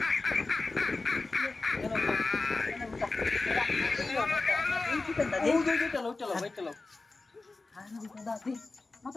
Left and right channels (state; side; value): quieter; right; 3.5 dB